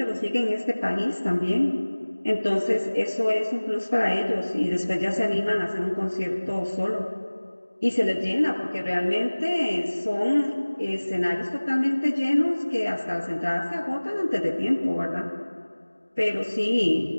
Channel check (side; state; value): both; inverted; correlation -1.00